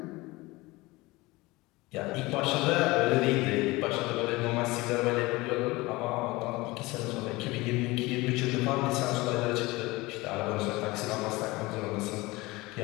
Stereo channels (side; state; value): right; quieter; 21.7 dB